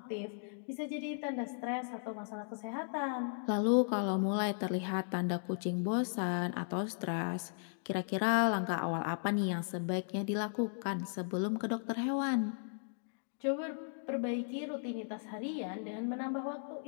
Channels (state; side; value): silent; right; digital silence